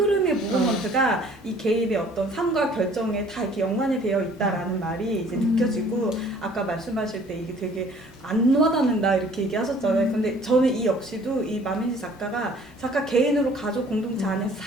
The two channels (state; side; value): normal; both; correlation 0.54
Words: 무브먼트가 이 개인의 어떤 삶과 결정에 다 이렇게 연관이 되어 있다라는 말이 이제 느껴지고 아까 말씀하실 때 이게 되게 안 와닿는다 이렇게 얘기하셨잖아요. 근데 저는 이 역시도 이 마민지 작가 개인으로 가족 공동체 안에서